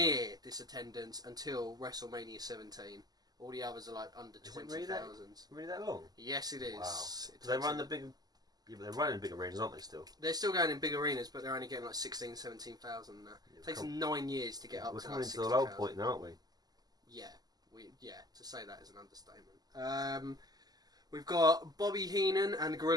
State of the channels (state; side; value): late; left; 0.19 ms